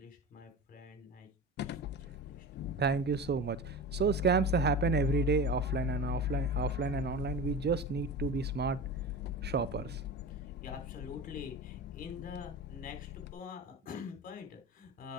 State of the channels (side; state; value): both; normal; correlation 0.30